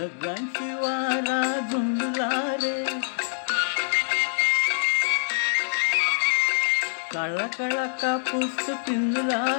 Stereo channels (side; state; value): right; silent; digital silence